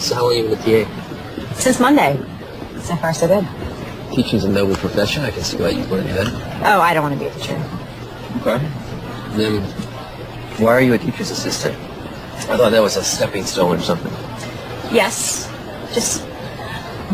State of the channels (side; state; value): both; identical; correlation 1.00